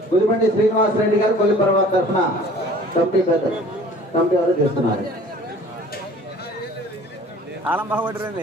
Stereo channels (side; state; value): both; normal; correlation 0.48